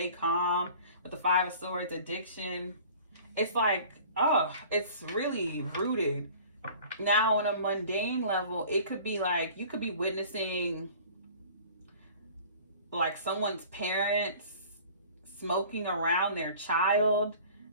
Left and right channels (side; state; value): both; inverted; correlation -0.46